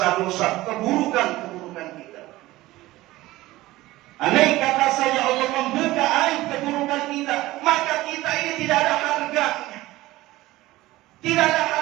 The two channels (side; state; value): left; quieter; 17.8 dB